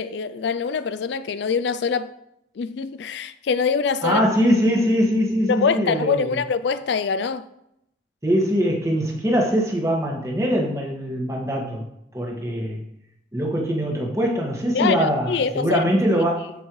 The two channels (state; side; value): normal; both; correlation 0.45